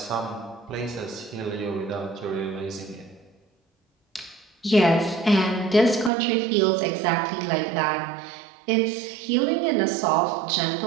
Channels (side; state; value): left; drops out; at 6.1 s